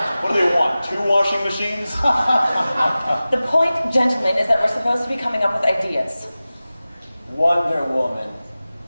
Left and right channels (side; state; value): both; inverted; correlation -0.97